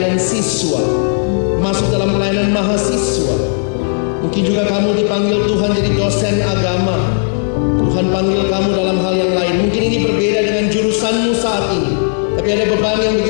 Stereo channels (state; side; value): silent; right; digital silence